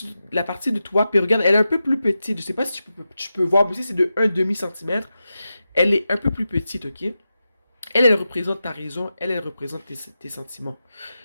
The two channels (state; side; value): inverted; both; correlation -0.91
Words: partie de toi. Puis regarde, elle est un peu plus petite. Je sais pas si tu peux voir, mais ici, c'est de un demi centimètre. Elle est un peu plus petite, ok? Elle représente ta raison. Elle représente tes sentiments.